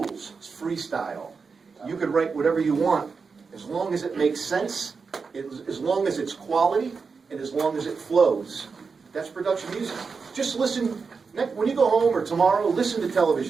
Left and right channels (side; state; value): left; quieter; 5.1 dB